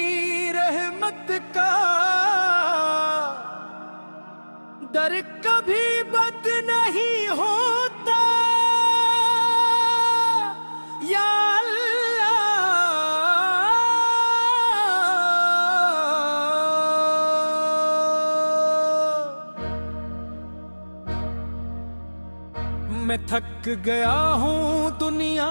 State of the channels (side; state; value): both; inverted; correlation -1.00